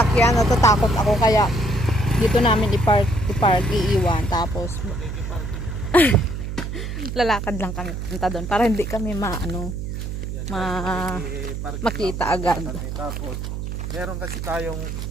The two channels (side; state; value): right; noise; hum, 5 dB below the sound